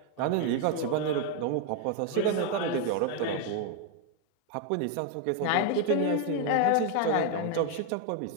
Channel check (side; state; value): both; different; correlation 0.01